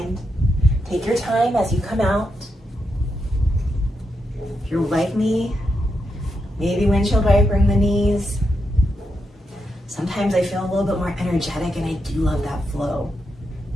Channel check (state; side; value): normal; both; correlation 0.84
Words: Take your time as you come out. If you're like me, maybe windshield wipering the knees. Sometimes I feel a little bit more energetic and I do love that flow.